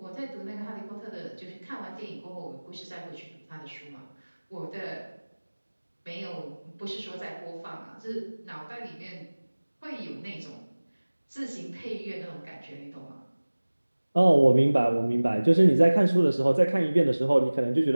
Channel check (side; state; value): both; inverted; correlation -1.00